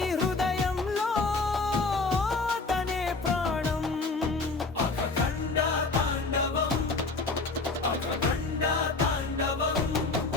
హృదయంలో తనే ప్రాణం అఖండ తాండవం అఖండ తాండవం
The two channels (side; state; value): right; quieter; 3.7 dB